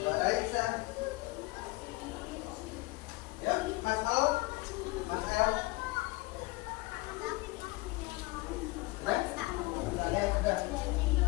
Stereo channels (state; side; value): quieter; right; 22.6 dB